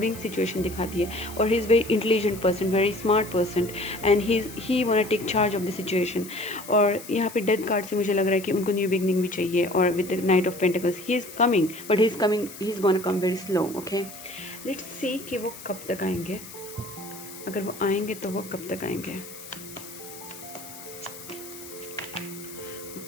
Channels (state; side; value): noise; left; hiss, 15 dB below the sound